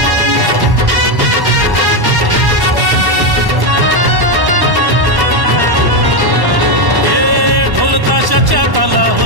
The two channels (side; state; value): left; late; 1.1 ms